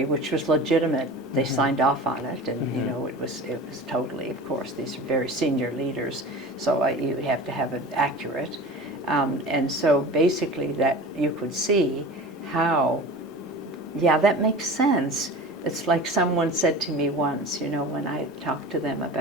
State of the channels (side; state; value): both; normal; correlation 0.35